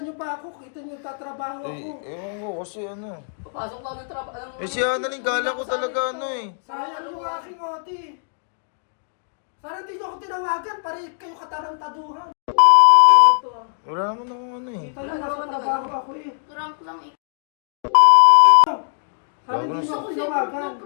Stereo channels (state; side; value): silent; right; digital silence